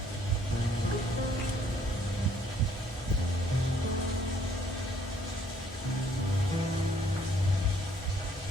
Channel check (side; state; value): both; normal; correlation 0.64